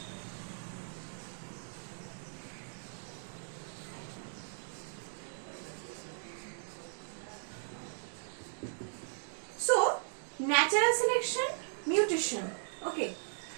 so natural selection, mutation, okay,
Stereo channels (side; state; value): left; silent; digital silence